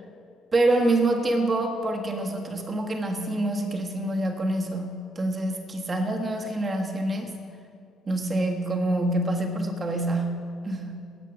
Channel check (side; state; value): both; normal; correlation 0.77